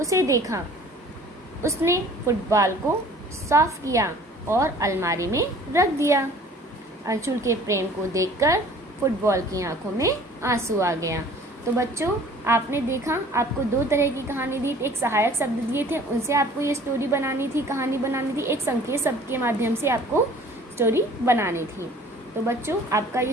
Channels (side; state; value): both; normal; correlation 0.50